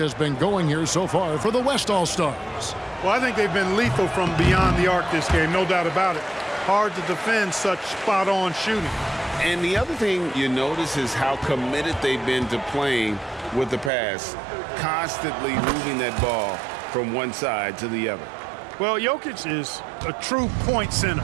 been going here so far for the West All-Stars. Well, I think they've been lethal from beyond the arc this game, no doubt about it. Hard to defend such spot-on shooting. And the other thing you notice is how committed they've been to playing with the pass, constantly moving that ball from one side to the other. Well, Jokic is a true point center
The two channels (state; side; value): drops out; left; at 13.9 s